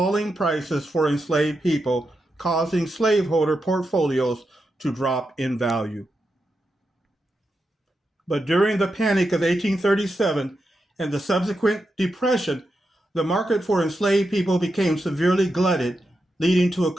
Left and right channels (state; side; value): normal; both; correlation 0.87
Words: prices for enslaved people, causing slaveholder portfolios to drop in value. But during the Panic of 1837 and the subsequent Depression, the market for enslaved people became severely glutted, leading to a